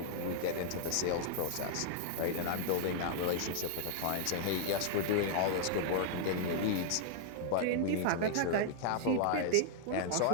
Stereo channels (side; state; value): both; different; correlation -0.01